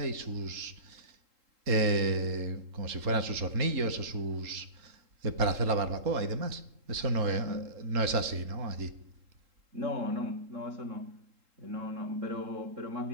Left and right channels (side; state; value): left; late; 3.8 ms